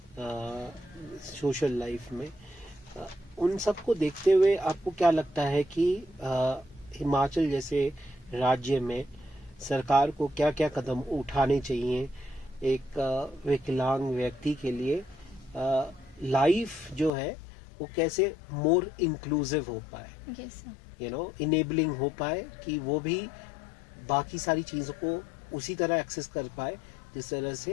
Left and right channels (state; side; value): drops out; right; at 17.1 s